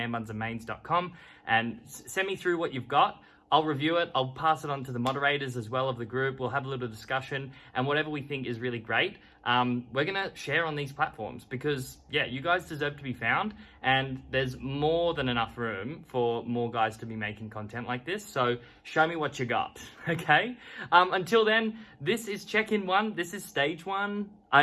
and send me through what you've got. I'll review it. I'll pass it on to the moderators as well of the group. We'll have a little discussion, and whatever we think is really great, we're going to share on these platforms because, yeah, you guys deserve to be found, and there's more than enough room for more guys to be making content like this. So show me what you got, okay? Until then, this is check-in 1. This is stage 1.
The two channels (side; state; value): both; identical; correlation 1.00